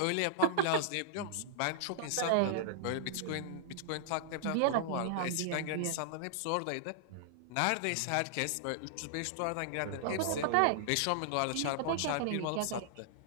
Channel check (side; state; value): both; different; correlation -0.01